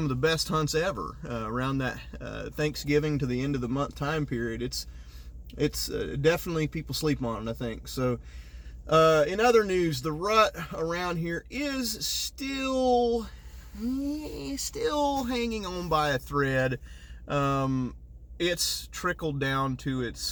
of the best hunts ever around that Thanksgiving to the end of the month time period. It's definitely, people sleep on it, I think. So in other news, the rut around here is still hanging on by a thread. It's trickled down to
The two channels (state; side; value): identical; both; correlation 1.00